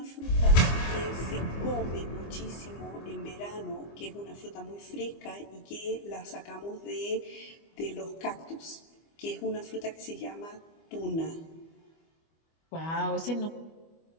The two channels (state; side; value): late; right; 25 ms